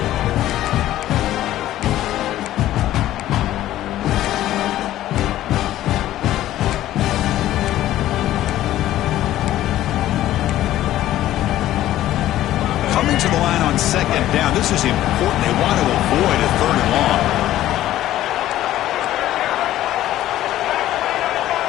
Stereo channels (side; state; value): right; quieter; 13.8 dB